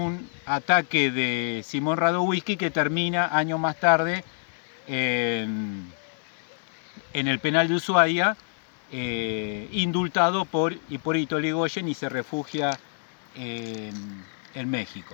ataque de Simón Radowisky, que termina años más tarde en el penal de Ushuaia, indultado por Hipólito Yrigoyen, y se refugia en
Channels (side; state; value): right; silent; digital silence